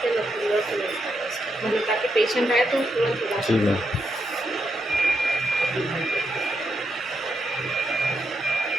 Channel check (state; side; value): normal; both; correlation 0.82